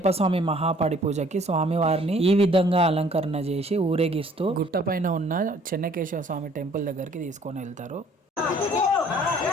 స్వామి మహాపాడి పూజకి స్వామి వారిని ఈ విధంగా అలంకరణ చేసి ఊరేగిస్తూ గుట్ట పైన ఉన్న చెన్నకేశవ స్వామి టెంపుల్ దగ్గరికి తీసుకొని వెళ్తారు.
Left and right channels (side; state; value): both; normal; correlation 0.58